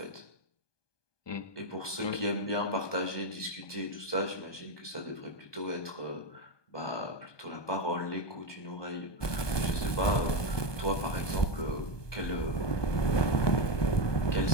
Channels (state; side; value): late; right; 1.2 ms